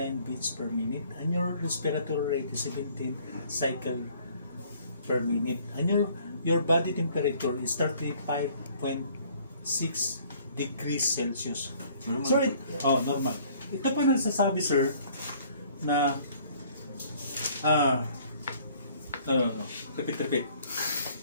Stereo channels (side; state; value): both; inverted; correlation -0.57